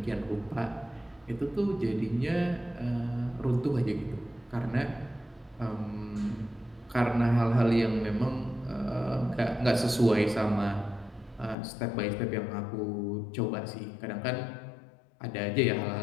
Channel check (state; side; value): drops out; right; at 11.6 s